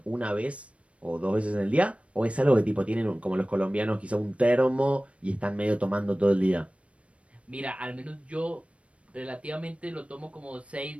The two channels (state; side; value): late; left; 0.062 ms